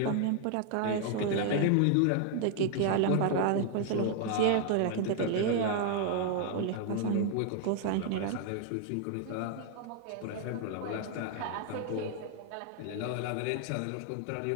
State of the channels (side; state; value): both; different; correlation 0.00